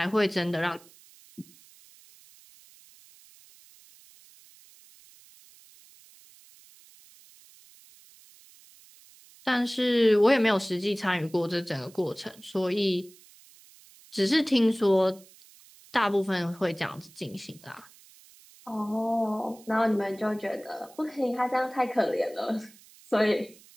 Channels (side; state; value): right; noise; hiss, 25 dB below the sound